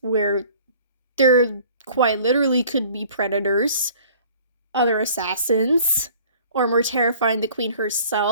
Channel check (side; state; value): both; inverted; correlation -0.51